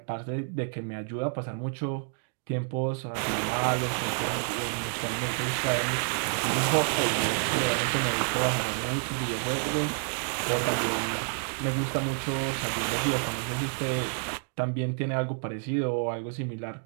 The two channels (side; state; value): left; silent; 59 dB below the other